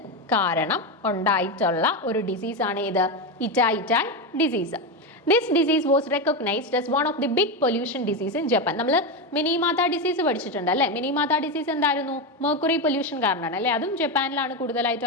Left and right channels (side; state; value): both; normal; correlation 0.13